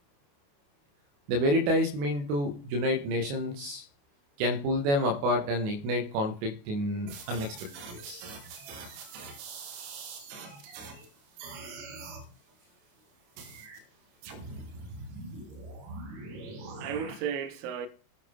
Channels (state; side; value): late; left; 28 ms